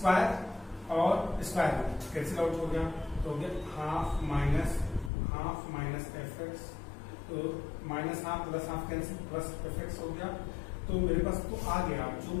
और स्क्वायर कैंसिल आउट हो गया, तो हो गया हाफ माइनस fx, तो minus half plus half cancel, plus fx हो गया। तो मेरे पास तो आ गया जो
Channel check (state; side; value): drops out; right; at 5.1 s